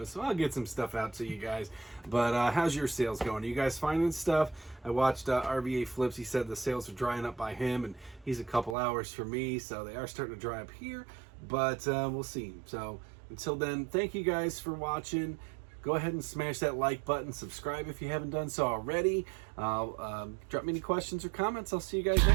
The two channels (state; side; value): drops out; left; at 8.8 s